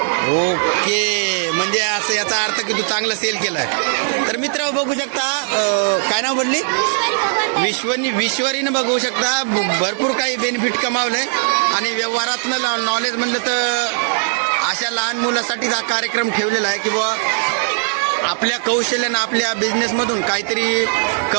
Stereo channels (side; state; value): left; silent; 67 dB below the other